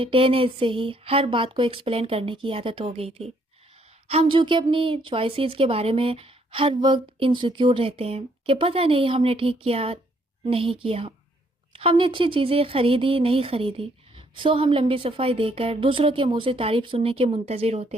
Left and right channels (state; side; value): normal; both; correlation 0.68